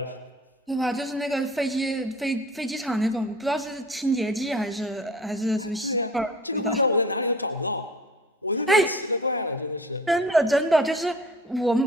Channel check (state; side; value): normal; both; correlation 0.43